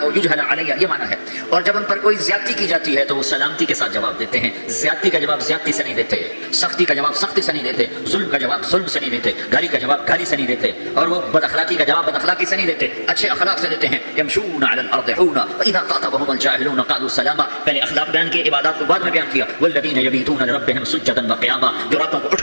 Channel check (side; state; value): both; inverted; correlation -1.00